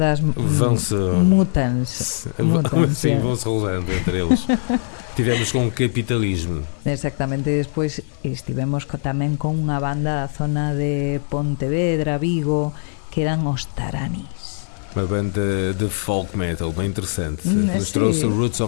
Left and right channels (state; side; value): silent; right; digital silence